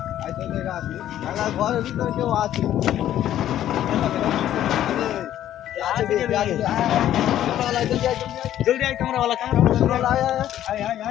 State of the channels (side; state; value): right; quieter; 11.9 dB